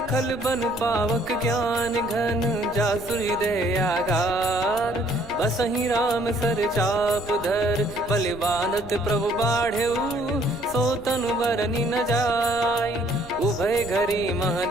खल बन पावक ज्ञान घन, जासु हृदय आगार। बसहि राम सर चाप धर, बलि बांधत प्रभु बाढ़ऊ, सो तनु बरनि न जाय। उभय घरी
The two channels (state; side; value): noise; left; rumble, 18 dB below the sound